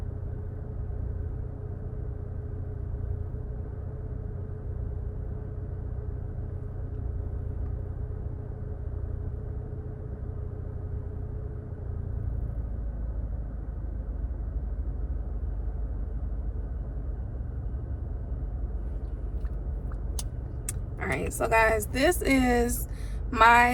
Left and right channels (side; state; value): both; identical; correlation 1.00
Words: Alright, so guys, this is